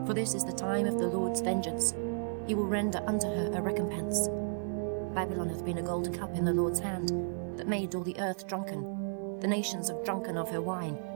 for this is the time of the Lord's vengeance. He will render unto her a recompense. Babylon hath been a golden cup in the Lord's hand, that made all the earth drunken. The nations have drunken of her wine,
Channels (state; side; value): silent; left; 55 dB below the other